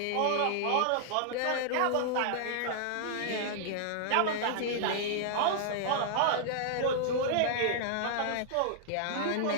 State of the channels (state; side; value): different; both; correlation -0.01